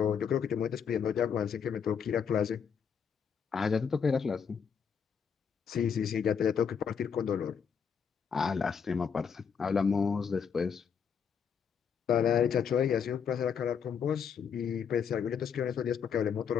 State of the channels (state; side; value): quieter; right; 7.0 dB